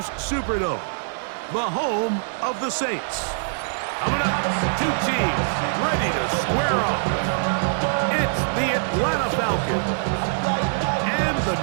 Superdome, the home of the Saints. Coming up, two teams ready to square off. It's the Atlanta Falcons and the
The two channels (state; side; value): silent; left; digital silence